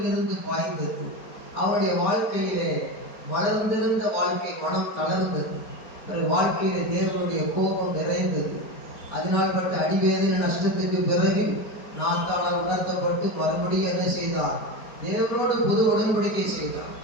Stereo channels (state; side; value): late; right; 4.6 ms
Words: இருந்து பாய்ந்தது. அவனுடைய வாழ்க்கையிலே வளர்ந்திருந்த வாழ்க்கை மனம் தளர்ந்தது. வாழ்க்கையிலே தேவனுடைய கோபம் நிறைந்தது. அதனால் பட்ட அடிவேதனை நஷ்டத்துக்கு பிறகு நாத்தானால் உணர்த்தப்பட்டு மறுபடியும் என்ன செய்தார்? தேவனோடு புது உடன்படிக்கை செய்தார்.